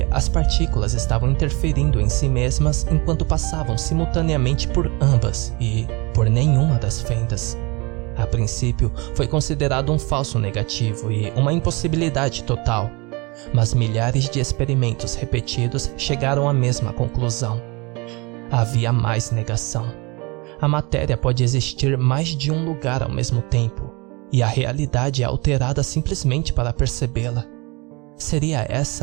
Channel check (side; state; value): left; quieter; 26.9 dB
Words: as partículas estavam interferindo em si mesmas enquanto passavam simultaneamente por ambas e por nenhuma das fendas. A princípio, foi considerado um falso negativo e uma impossibilidade total, mas milhares de experimentos repetidos chegaram à mesma conclusão. Havia mais negação. A matéria pode existir mais de um lugar ao mesmo tempo, e a realidade é alterada simplesmente para percebê-la. Seria